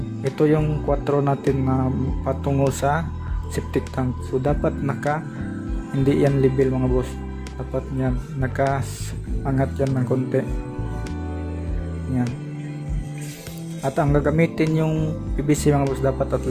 ito yung 4 natin na patungo sa septic tank. So dapat hindi yan level mga boss. Dapat yan naka-angat yan ng konti. Yan. At ang gagamitin yung PVC mga boss dapat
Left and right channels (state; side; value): identical; both; correlation 1.00